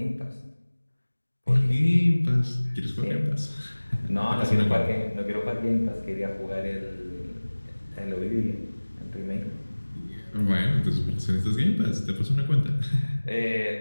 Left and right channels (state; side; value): inverted; both; correlation -1.00